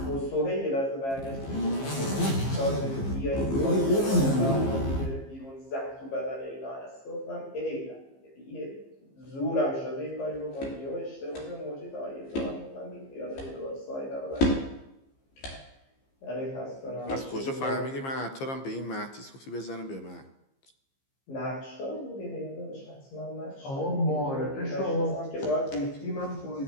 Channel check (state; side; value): late; right; 15 ms